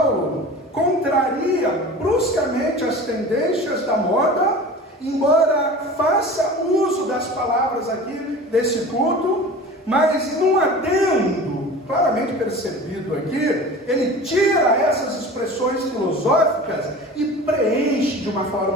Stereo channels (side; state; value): both; normal; correlation 0.37